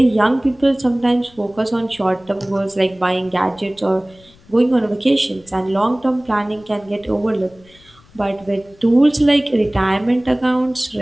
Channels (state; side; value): noise; left; rumble, 28 dB below the sound